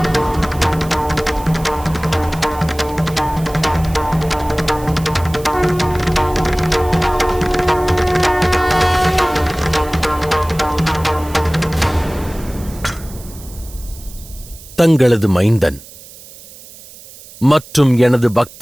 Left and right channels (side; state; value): right; noise; hiss, 19 dB below the sound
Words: தங்களது மைந்தன் மற்றும் எனது